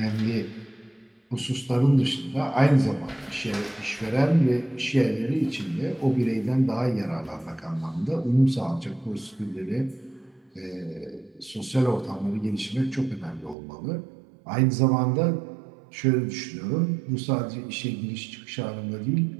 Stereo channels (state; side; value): drops out; left; at 13.6 s